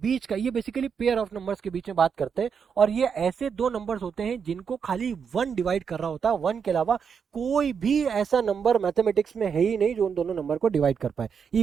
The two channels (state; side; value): quieter; left; 6.7 dB